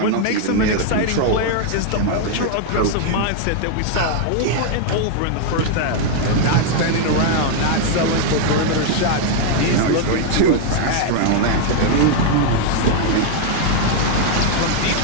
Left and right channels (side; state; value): both; different; correlation 0.00